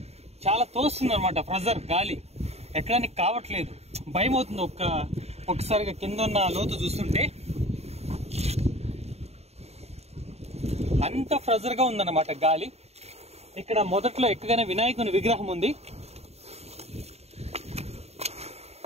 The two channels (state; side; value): late; left; 0.30 ms